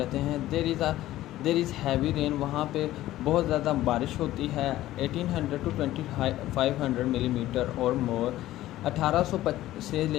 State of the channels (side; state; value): right; quieter; 15.0 dB